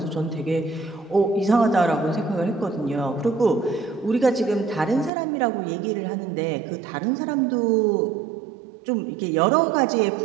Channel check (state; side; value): drops out; left; at 5.1 s